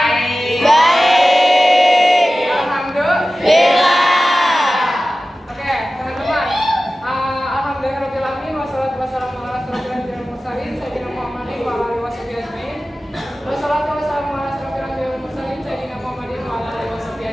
Baik. Alhamdulillah. Oke, teman-teman. Alhamdulillahirobbilalamin wassalatu wassalamu ala asyrofil mursalin sayyidina Muhammadin wa alihi washabihi ajmain. Wassalatu wassalamu ala asyrofil mursalin sayyidina Muhammadin wa alihi washabihi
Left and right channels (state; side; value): normal; both; correlation 0.95